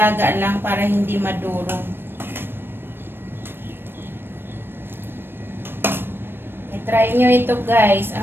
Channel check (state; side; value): late; left; 0.10 ms